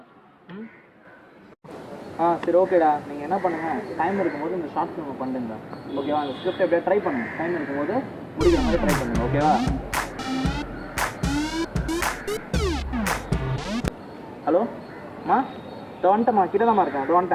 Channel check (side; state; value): both; identical; correlation 1.00